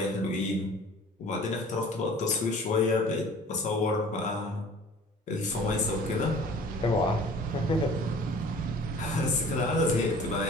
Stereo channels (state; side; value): normal; both; correlation 0.47